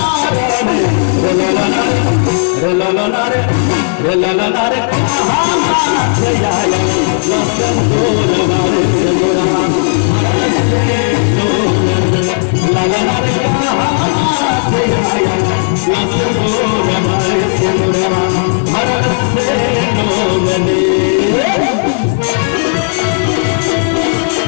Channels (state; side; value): silent; right; digital silence